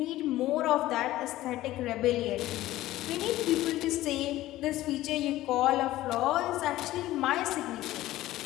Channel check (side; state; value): right; quieter; 15.7 dB